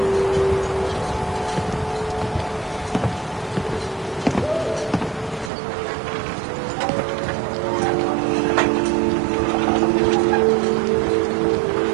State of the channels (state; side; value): drops out; left; at 5.5 s